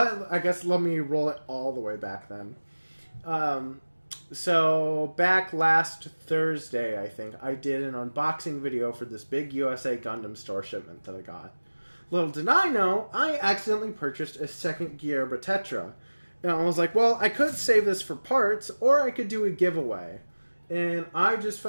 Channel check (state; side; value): inverted; both; correlation -1.00